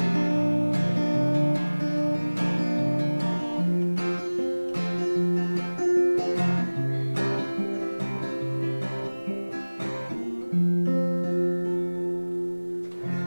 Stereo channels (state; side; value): inverted; both; correlation -1.00